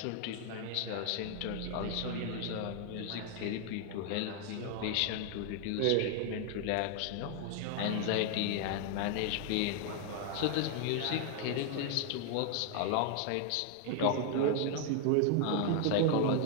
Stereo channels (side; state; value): both; different; correlation 0.00